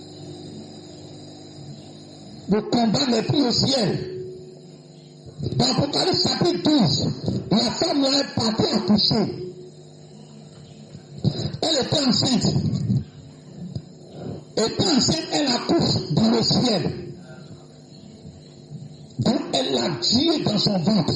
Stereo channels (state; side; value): identical; both; correlation 1.00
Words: Le combat n'est plus au ciel. Dans Apocalypse chapitre 12, la femme là est partie accoucher. Elle était enceinte. Étant enceinte, elle accouche dans le ciel. Donc elle a Dieu dans son ventre.